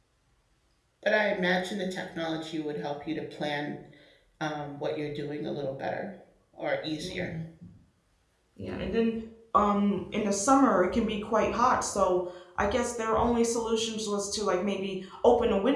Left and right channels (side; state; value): both; identical; correlation 1.00